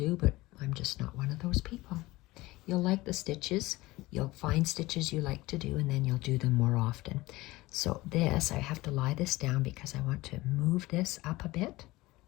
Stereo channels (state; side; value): quieter; right; 19.6 dB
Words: but I'm just not one of those people. You'll like the stitches. You'll find stitches you like to do, and then you'll do them more often. So this, I have to lie this down because I want to move this up a bit.